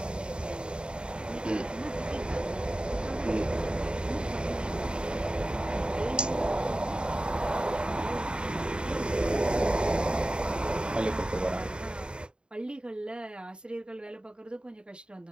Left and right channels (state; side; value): late; left; 0.051 ms